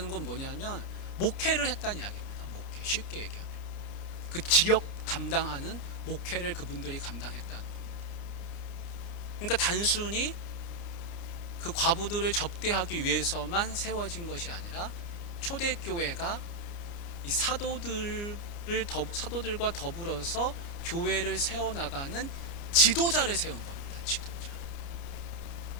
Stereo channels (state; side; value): late; right; 29 ms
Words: 건 뭐냐면 목회를 했다는 이야기입니다. 목회, 쉽게 얘기하면 그 지역 담당하는 목회를 그분들이 감당했다는 겁니다. 그러니까 단순히 그 과부들을 접대하기 위해서만 세워진 것이 아니라 초대교회가 이 사도들과 더불어서 교회를 세워나가는 지도자를 세운 겁니다. 지도자.